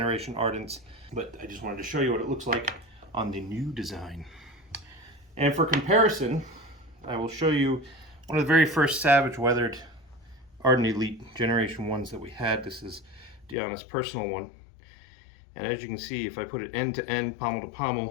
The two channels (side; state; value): right; drops out; at 13.6 s